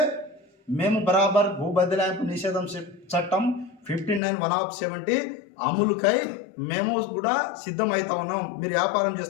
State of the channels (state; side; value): drops out; right; at 4.2 s